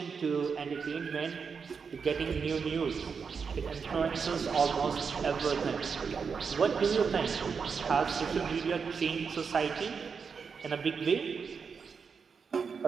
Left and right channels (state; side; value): quieter; left; 5.8 dB